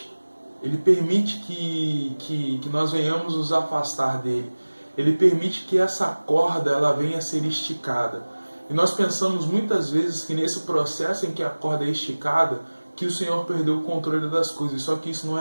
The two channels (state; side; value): inverted; both; correlation -1.00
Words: que nós venhamos nos afastar dele. Ele permite que essa corda ela venha a ser esticada. E nós pensamos muitas vezes que nesse processo em que a corda é esticada, que o Senhor perdeu o controle das coisas. Só que isso não